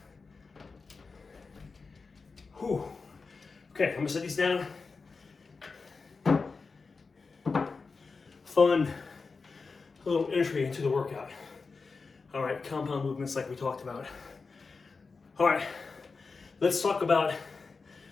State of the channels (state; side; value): quieter; right; 4.5 dB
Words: Whew. Okay, I'm gonna set these down. Fun little entry into the workout. All right, compound movements like we talked about. All right, let's talk about